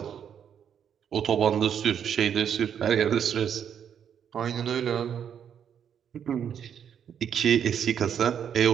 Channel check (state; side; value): quieter; left; 8.4 dB